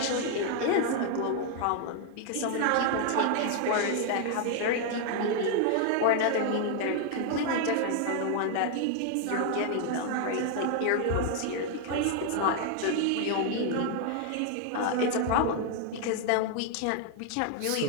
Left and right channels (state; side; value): different; both; correlation 0.00